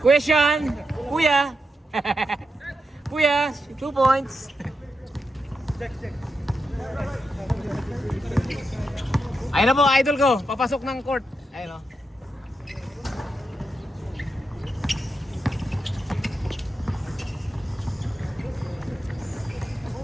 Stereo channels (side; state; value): both; normal; correlation 0.86